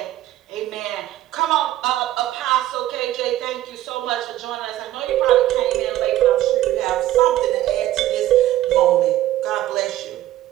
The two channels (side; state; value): left; quieter; 14.3 dB